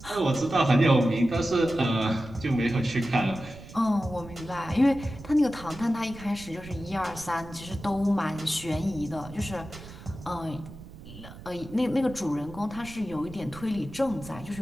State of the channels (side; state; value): right; noise; rumble, 16 dB below the sound